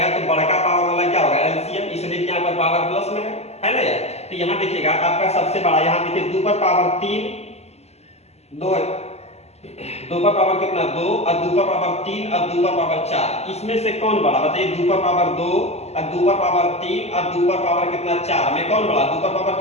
तो बड़का पावर वाला क्या होगा LCM, इसलिए यहाँ पर पावर प्लस में है ना यार। तो यहाँ देखिएगा आपका सबसे बड़ा, यहाँ देखिए 2 पर पावर 3 2 2 पर पावर कितना 2 और 2 पर पावर 3 और 2 पर पावर 4, इसमें से कौन बड़ा बताइए। 2 पर पावर 2 और 2 पर पावर 3 और 2 पर पावर कितना 4 में कौन बड़ा, 2 पर पावर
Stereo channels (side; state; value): right; late; 0.31 ms